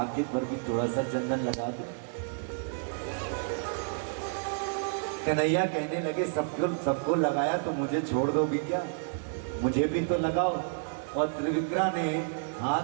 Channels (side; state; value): left; silent; 58 dB below the other